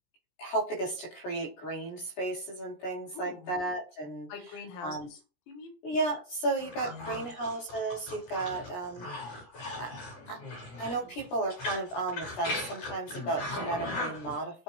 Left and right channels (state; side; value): late; right; 17 ms